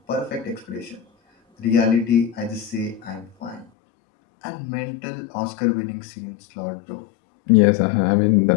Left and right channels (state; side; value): drops out; right; at 3.7 s